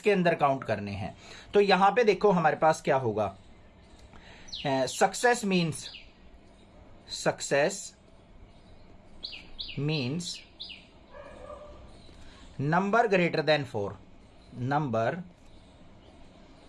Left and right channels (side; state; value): both; identical; correlation 1.00